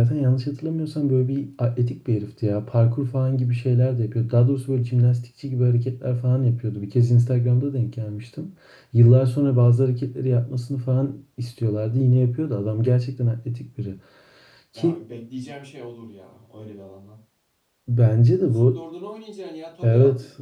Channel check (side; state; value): both; identical; correlation 1.00